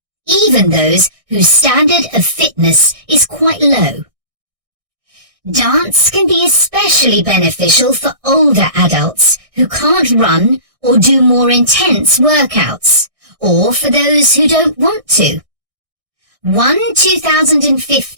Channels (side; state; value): left; late; 1.6 ms